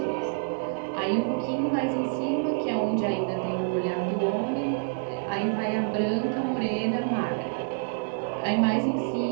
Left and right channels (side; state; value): left; silent; digital silence